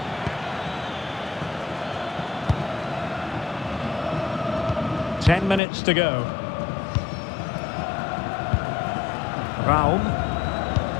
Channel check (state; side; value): drops out; right; at 5.6 s